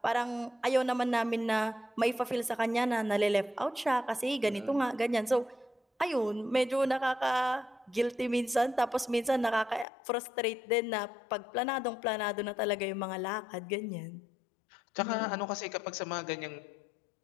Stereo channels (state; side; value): drops out; right; at 9.9 s